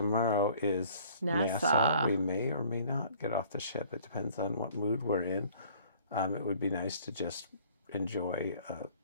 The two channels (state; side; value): inverted; both; correlation -0.54